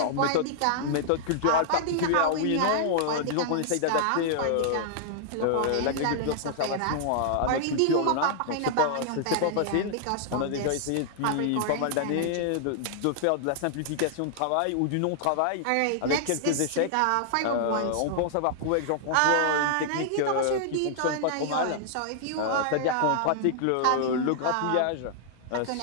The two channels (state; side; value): different; both; correlation -0.01